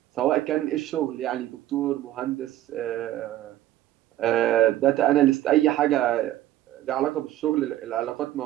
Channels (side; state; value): left; quieter; 13.9 dB